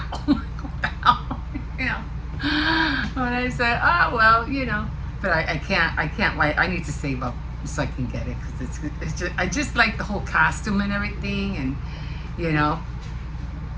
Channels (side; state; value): both; identical; correlation 1.00